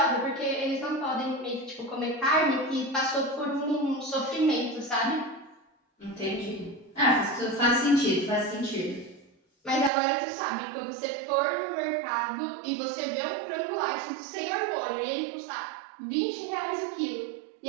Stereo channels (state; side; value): drops out; left; at 9.9 s